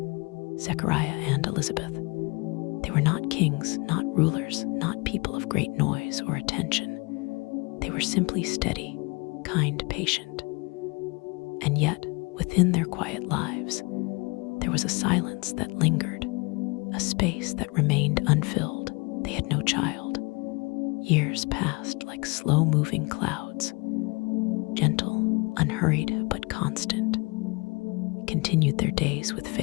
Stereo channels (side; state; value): right; quieter; 28.5 dB